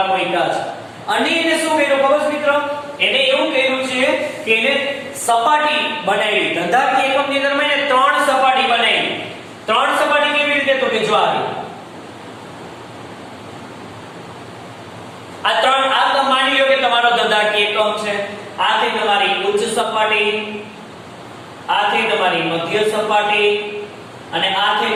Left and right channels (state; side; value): identical; both; correlation 1.00